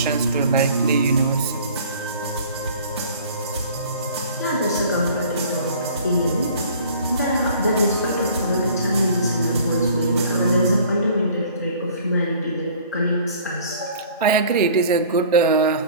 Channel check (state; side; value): inverted; both; correlation -0.49